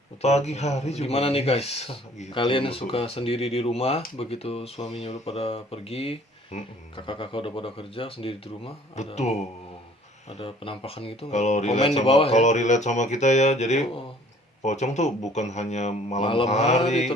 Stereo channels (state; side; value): normal; both; correlation 0.54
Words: pagi hari juga. Gimana nih guys? Gitu. Kalian suka sendiri di rumah, begitu suaminya udah pada pergi, kakak-kakak udah pada kerja sendiri di rumah. Betul. Ada penampakan gitu nggak? Kalau relate sama kita ya, jadi pocong tuh bukan hanya malam hari